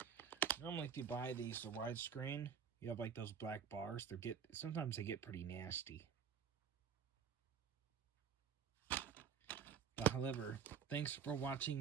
Normally if you buy these the widescreen, you have like those black bars. Sometimes they get pretty nasty. But however, thanks for watching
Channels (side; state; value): left; quieter; 7.4 dB